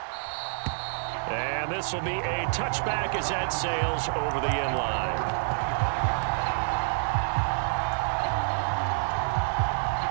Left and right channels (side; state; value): left; silent; digital silence